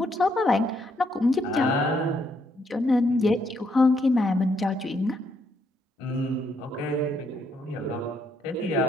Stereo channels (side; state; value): both; normal; correlation 0.74